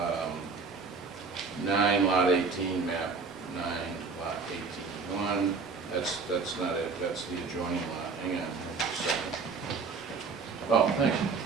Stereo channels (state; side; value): quieter; left; 4.8 dB